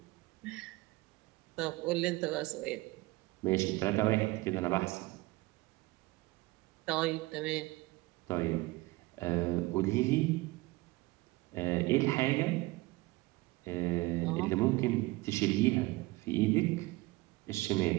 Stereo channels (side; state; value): left; quieter; 21.3 dB